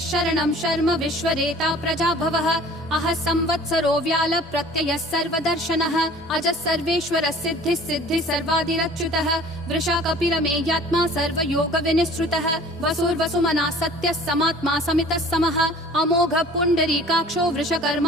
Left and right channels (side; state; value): both; normal; correlation 0.48